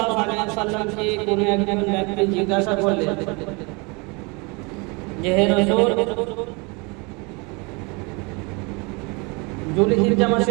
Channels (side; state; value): left; quieter; 29.2 dB